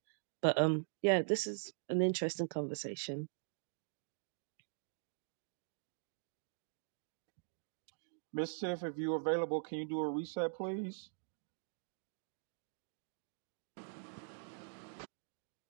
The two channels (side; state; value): left; silent; digital silence